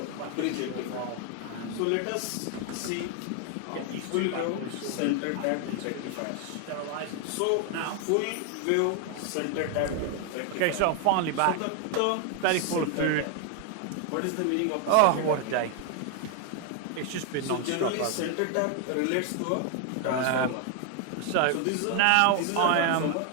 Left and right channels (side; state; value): both; different; correlation 0.00